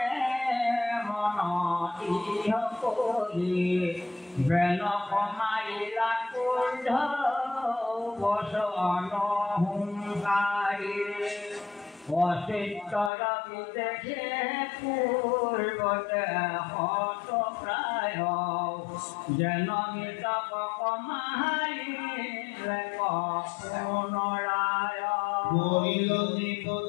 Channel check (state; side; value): drops out; right; at 13.1 s